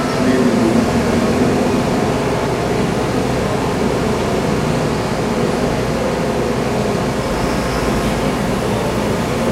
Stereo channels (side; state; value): both; identical; correlation 1.00